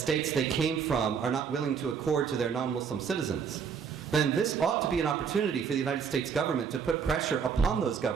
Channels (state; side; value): quieter; left; 6.7 dB